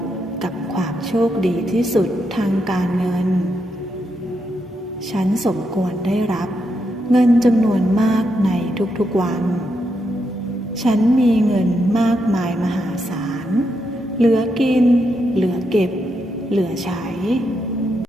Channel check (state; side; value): normal; both; correlation 0.82